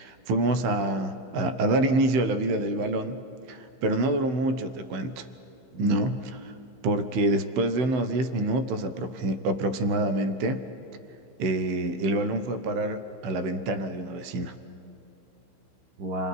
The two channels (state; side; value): late; left; 16 ms